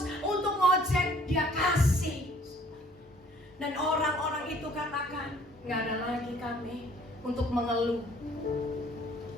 untuk ngojek, dia kasih. Dan orang-orang itu katakan, nggak ada lagi kami untuk mengeluh.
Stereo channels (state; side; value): normal; both; correlation 0.57